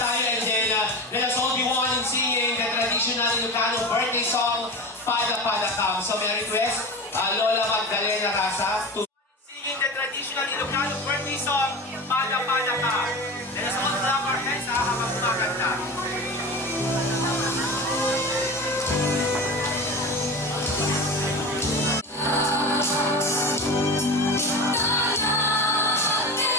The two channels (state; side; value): normal; both; correlation 0.29